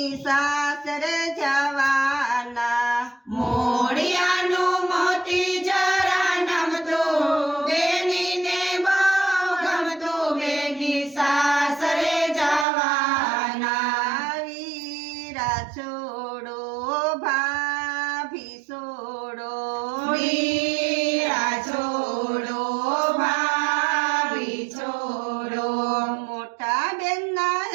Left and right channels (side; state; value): left; drops out; at 12.7 s